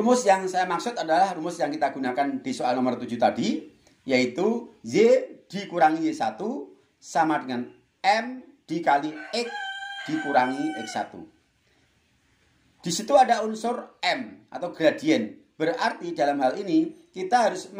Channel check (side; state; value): both; identical; correlation 1.00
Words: yang saya maksud adalah rumus yang kita gunakan di soal nomor 7 tadi, yaitu Y dikurangi Y1 sama dengan M dikali X dikurangi X1. Di situ ada unsur M atau gradien. Berarti dalam hal ini kita harus